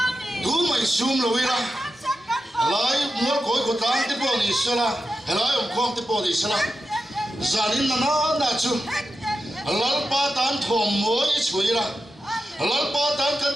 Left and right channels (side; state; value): both; normal; correlation 0.91